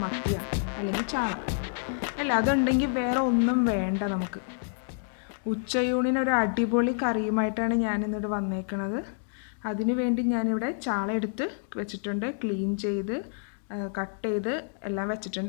മത്തിയാണ്, അല്ലെങ്കിൽ ചാള. അല്ല, അതുണ്ടെങ്കിൽ വേറെ ഒന്നും വേണ്ട നമുക്ക്. ഉച്ചയൂണിന് ഒരു അടിപൊളി കറിയുമായിട്ടാണ് ഞാനിന്നിവിടെ വന്നേക്കുന്നത്. അതിനു വേണ്ടി ഞാനിവിടെ ചാള എടുത്ത് വെച്ചിട്ടുണ്ട്. ക്ലീൻ ചെയ്ത് കട്ട് ചെയ്ത് എല്ലാം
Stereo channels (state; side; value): silent; right; digital silence